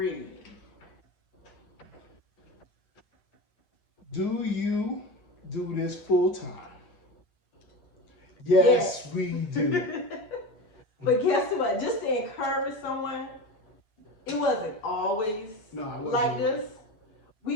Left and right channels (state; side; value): late; right; 9.1 ms